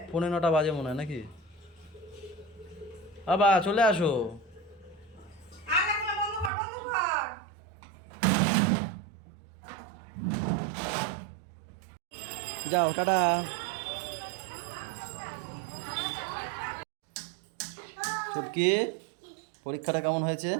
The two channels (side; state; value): left; drops out; at 6.5 s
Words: 9:45 বাজে মনে হয় নাকি? বাবা চলে আসো। আর দেখো না, বন্ধ কর, বন্ধ কর। যাও, টাটা। ছুটকি, পরীক্ষাটা কেমন হয়েছে?